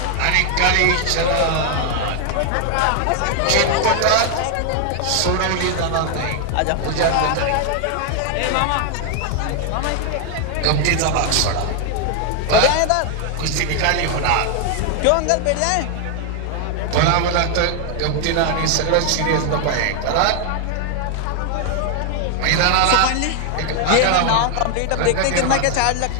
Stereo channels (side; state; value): both; different; correlation 0.00